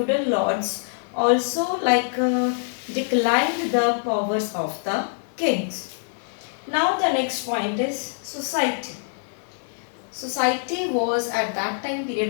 lords also declined the powers of the kings. Now the next point is society. Society was at that time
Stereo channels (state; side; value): silent; right; 62 dB below the other